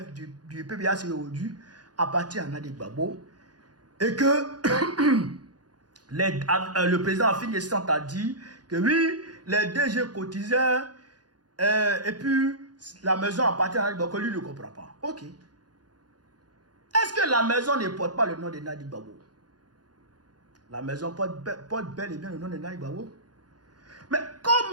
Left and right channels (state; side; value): late; left; 0.69 ms